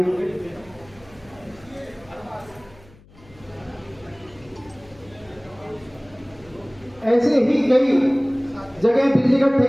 ऐसे ही कई जगह बिजली का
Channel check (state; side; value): noise; left; hum, 26 dB below the sound